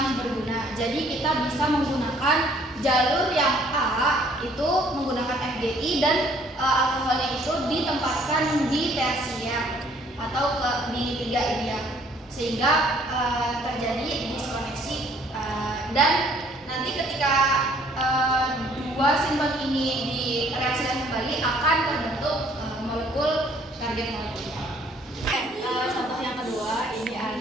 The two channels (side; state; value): both; normal; correlation 0.61